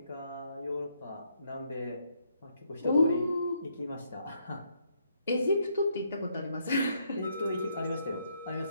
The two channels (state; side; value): inverted; both; correlation -0.74